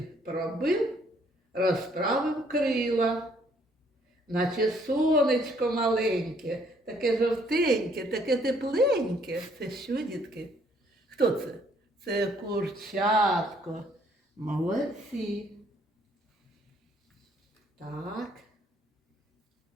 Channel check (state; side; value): normal; both; correlation 0.65